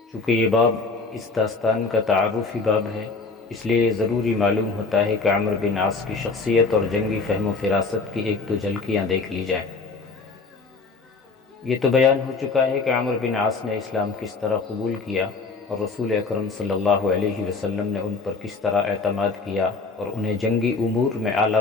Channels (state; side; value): quieter; right; 4.1 dB